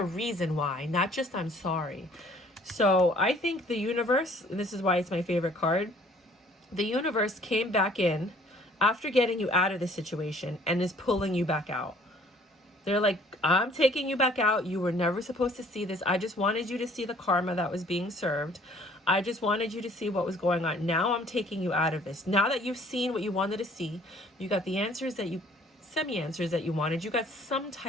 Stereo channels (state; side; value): normal; both; correlation 0.57